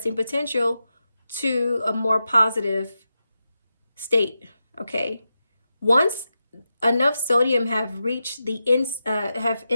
potential to a more positive state, okay? Once enough sodium have reached the what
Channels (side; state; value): both; inverted; correlation -0.90